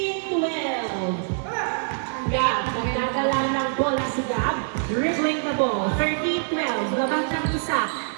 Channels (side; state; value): left; silent; 62 dB below the other